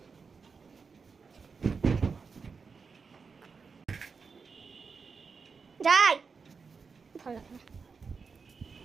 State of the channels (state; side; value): quieter; left; 5.1 dB